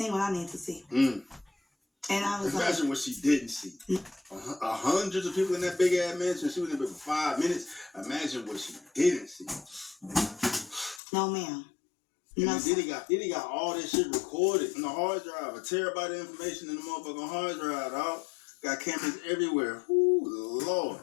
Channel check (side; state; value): right; drops out; at 11.0 s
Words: what I needed to see. And I was Imagine what she didn't see. Hundreds of people in that big ass mansion. She was in there for 5 minutes. Imagine what she didn't see. No, ma'am. No, Diddy got all this shit recorded in the hard drive. A terabyte of information in the motherfucking hard drive, dog. Got cameras everywhere. Ooh, Lord.